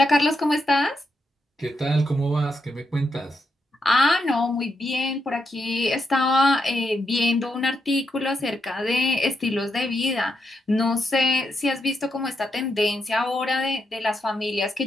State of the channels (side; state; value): both; normal; correlation 0.82